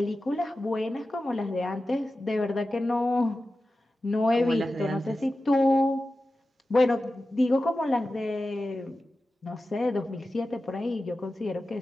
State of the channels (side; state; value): both; normal; correlation 0.94